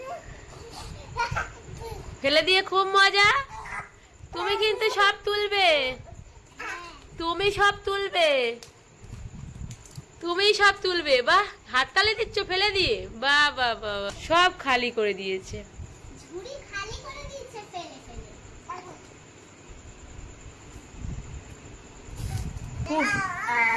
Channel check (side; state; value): both; identical; correlation 1.00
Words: ফেলে দিয়ে খুব মজা। তুমি কিন্তু সব তুলবে, তুমি সব তুলবে, তুমি সব তুলবে। বাহ, হাততালি দিচ্ছ ফেলে দিয়ে। বাহ বাহ বাহ, সব খালি করে দিয়েছে, ঝুড়ি খালি করে দিয়েছে ফেলে ফেলে।